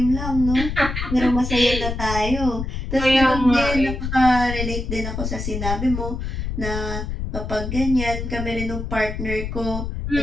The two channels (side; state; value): left; noise; rumble, 4 dB below the sound